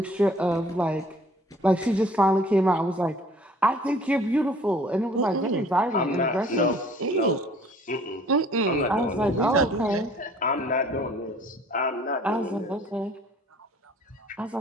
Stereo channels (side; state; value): both; normal; correlation 0.54